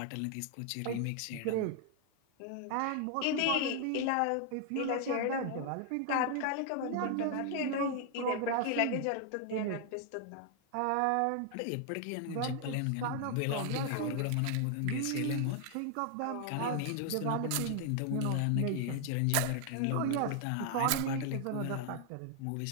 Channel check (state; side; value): different; both; correlation 0.00